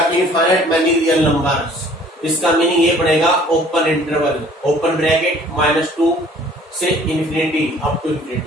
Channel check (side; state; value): both; normal; correlation 0.54